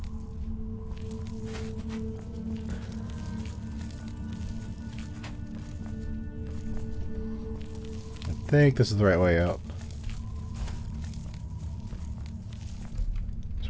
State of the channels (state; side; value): identical; both; correlation 1.00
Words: think this is the right way out.